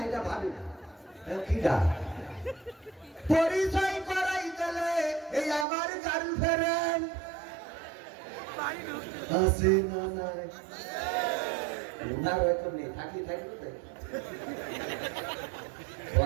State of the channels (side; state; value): left; drops out; at 5.7 s